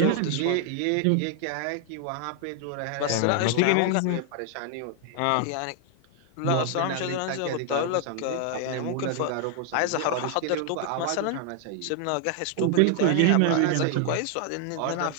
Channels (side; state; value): both; different; correlation 0.00